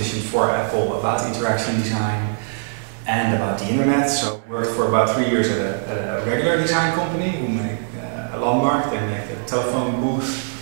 for Apple about interaction design and about the internet. So I worked for about 3 years at a regular design company who make a landmark. They make the telephone booth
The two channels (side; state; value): left; silent; digital silence